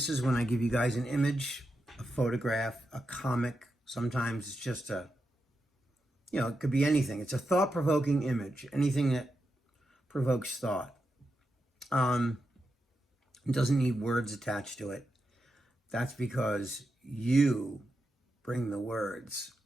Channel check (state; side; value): normal; both; correlation 0.87